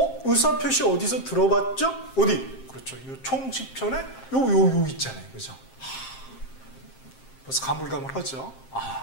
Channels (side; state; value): right; late; 7.6 ms